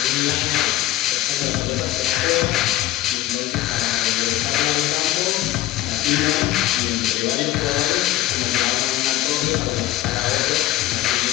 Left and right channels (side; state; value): right; quieter; 15.0 dB